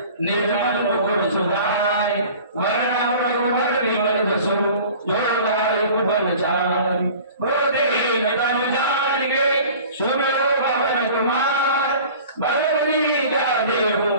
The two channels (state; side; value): inverted; both; correlation -0.44